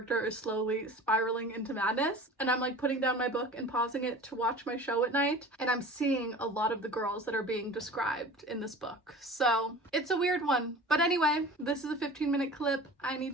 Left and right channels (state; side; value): normal; both; correlation 0.40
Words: is slowly spiraling into madness, and I'm like putting down my book and pausing it to watch my show at night, and I'm seeing a lot of the girls that are being described in this book. So it's a weird one. But anyway, this is a 15-minute clip. I need